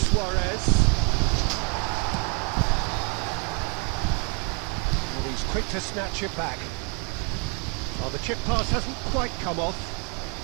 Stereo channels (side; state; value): left; quieter; 36.8 dB